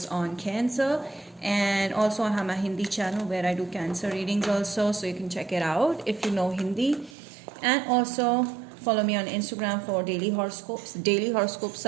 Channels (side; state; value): left; drops out; at 7.2 s